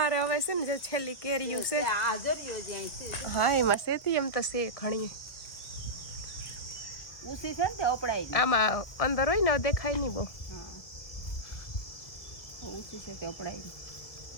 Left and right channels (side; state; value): right; late; 1.9 ms